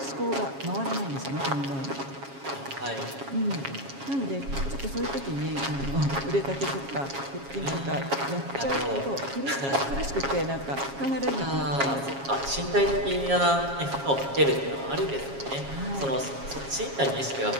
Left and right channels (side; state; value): left; late; 7.3 ms